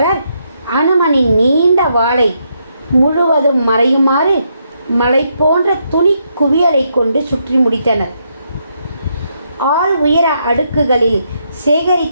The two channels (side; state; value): both; inverted; correlation -0.78